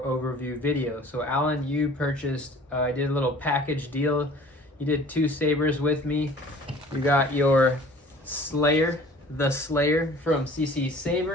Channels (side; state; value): both; normal; correlation 0.48